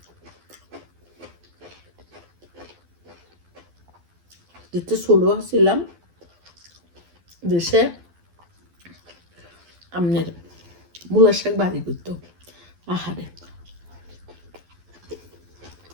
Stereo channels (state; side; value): late; left; 12 ms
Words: যেতে ছোট ছিলাম দেশে আমনের মূলার শাক বাড়ি করতো আহারে।